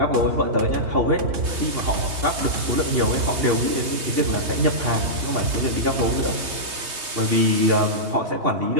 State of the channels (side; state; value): left; late; 3.2 ms